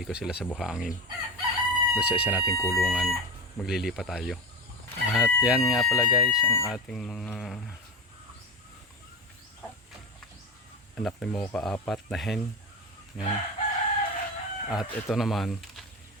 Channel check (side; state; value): both; normal; correlation 0.21